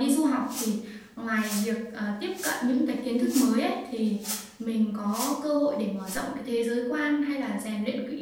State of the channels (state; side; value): identical; both; correlation 1.00